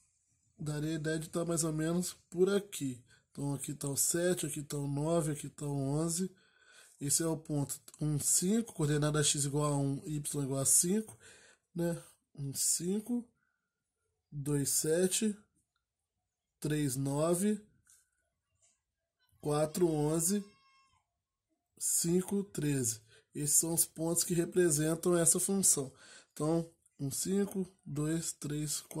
daria a ideia de estar mais ou menos por aqui. Então aqui está o 7, aqui está o 9, aqui está o 11. Esse é o ponto 1, 5, coordenada x igual a 1, y igual a 5, né? 1, 5, 2, 7, 3, 9, 4, 11, 5, 13. Esses são os pontos que representam essa função. Então, 1, 5, 2, 3,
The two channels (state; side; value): identical; both; correlation 1.00